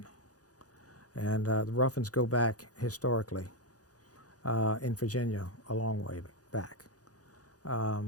and the Ruffins go back historically in Virginia a long way back.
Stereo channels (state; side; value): late; right; 0.67 ms